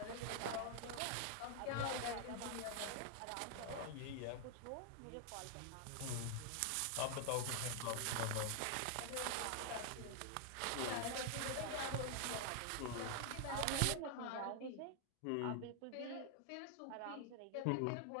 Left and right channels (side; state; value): both; different; correlation 0.00